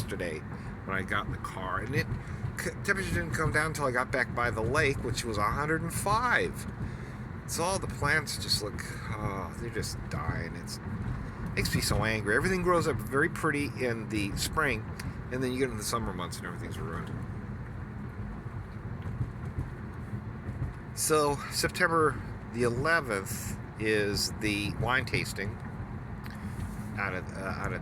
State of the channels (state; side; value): identical; both; correlation 1.00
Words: when I got in the car, and temperature didn't come down until I got back by the lake, which was 105. So all the plants just look, they're just dying. It makes me so angry. Everything grows up very pretty in the spring, and then you get into the summer months and everything's ruined. So September the 11th is the wine tasting out